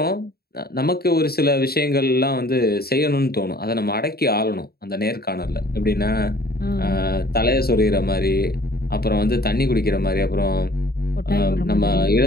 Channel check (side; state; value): right; late; 0.45 ms